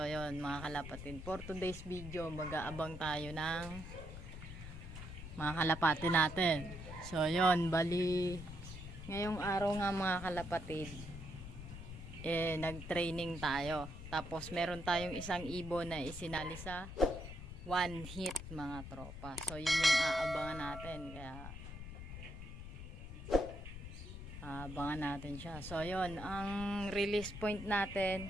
yun mga kalapatid, for today's video mag-aabang tayo ng mga kalapati natin. So yun, bali ngayong araw nga mga kalapatid, nag-training tayo. Tapos meron tayong isang ibon na isinali sa one hit mga tropa. So yun yung aabangan natin, kaya abangan natin siya. So yun, ang release point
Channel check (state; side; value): noise; left; rumble, 10 dB below the sound